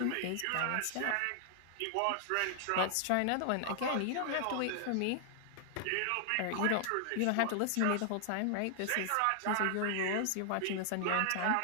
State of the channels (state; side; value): different; both; correlation 0.00